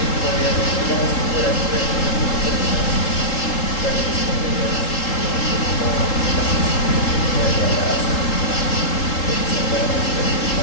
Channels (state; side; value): late; right; 3.8 ms